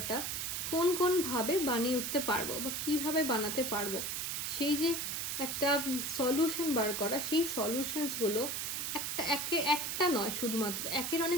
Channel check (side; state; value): right; noise; hiss, 2 dB below the sound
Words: কোনভাবে বানিয়ে উঠতে পারবো বা কিভাবে বানাতে পারবো, সেই যে একটা সলিউশন বার করা, সেই সলিউশনসগুলো একটা নয়, শুধুমাত্র একের